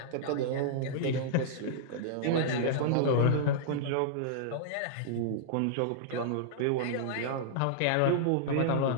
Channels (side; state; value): both; different; correlation -0.02